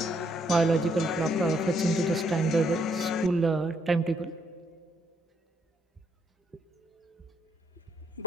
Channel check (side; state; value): both; normal; correlation 0.73